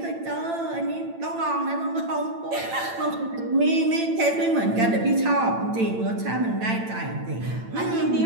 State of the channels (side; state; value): left; late; 8.9 ms